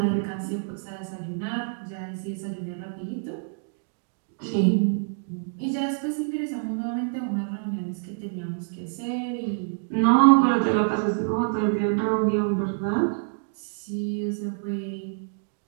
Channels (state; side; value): silent; left; digital silence